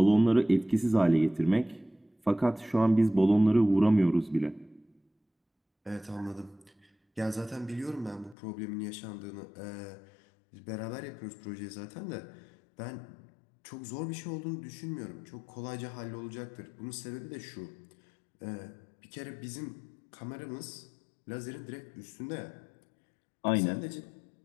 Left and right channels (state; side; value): drops out; right; at 8.3 s